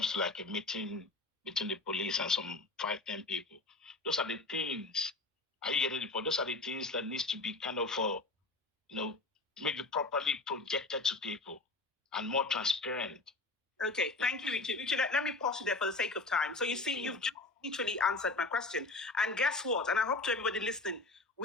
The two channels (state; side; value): quieter; right; 3.3 dB